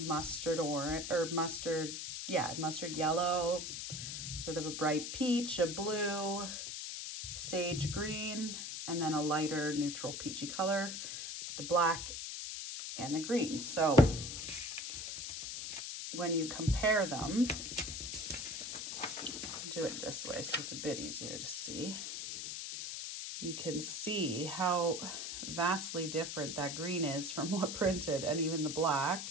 orange, or mustard, yeah, mustard yellow, sort of a bright peach, a blue, sage green, and then a lighter neutral peachy color, the black and the green. So when you compare them, do it this way so it's a bit easier to see. You can see how vastly different that green is from what printed, and even the black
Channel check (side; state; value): left; noise; hiss, 5 dB below the sound